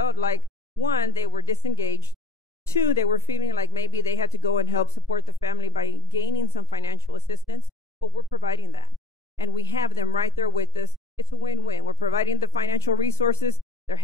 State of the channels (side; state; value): right; quieter; 4.4 dB